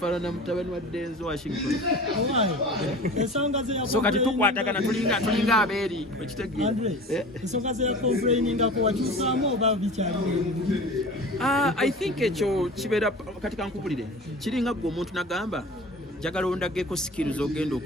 mutabani wa Denzel Washington. So kati tukwatagana tulinga abeeri ekitegeera ensonga ze complaininga ko wakyusaamu oba bikyali. I think ekyo kibeera kati kankubulire kiringa gwe omuntu nagamba njagala ondageko skills ogenda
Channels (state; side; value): normal; both; correlation 0.38